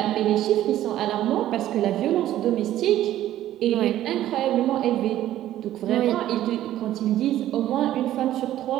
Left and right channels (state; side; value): quieter; left; 13.1 dB